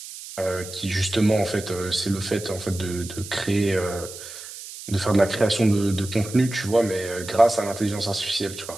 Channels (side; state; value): right; noise; hiss, 13 dB below the sound